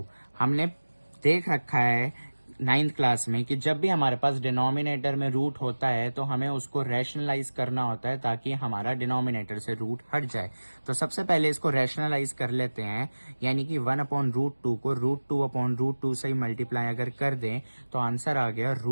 हमने देख रखा है 9th क्लास में कि जब भी हमारे पास डिनोमिनेटर में रूट होता है तो हमें उसको रैशनलाइज करना होता है ताकि हमारा डिनोमिनेटर से रूट हट जाए। तो सबसे पहले इसको रैशनलाइज कर लेते हैं, यानी कि 1/√2 को √2/√2 से ही मल्टीप्लाई अगर कर दें तो आंसर आ गया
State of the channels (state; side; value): inverted; both; correlation -1.00